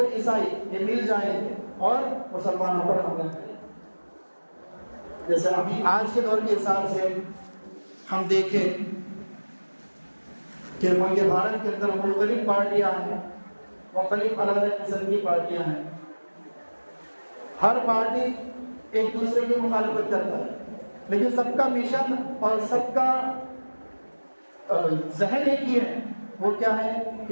عیسائی یہ مل جائیں گے اور مسلمانوں پر حملہ کریں گے۔ جیسے ابھی آج کے دور کے حساب سے ہم دیکھیں کہ ملک بھارت کے اندر مختلف پارٹیاں ہیں، مختلف الگ الگ قسم کی پارٹیاں ہیں، ہر پارٹی ایک دوسرے کی مخالفت کرتا ہے، لیکن سب کا مشن اور سب کا ذہن ایک ہی ہے، وہ کیا ہے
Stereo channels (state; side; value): inverted; both; correlation -1.00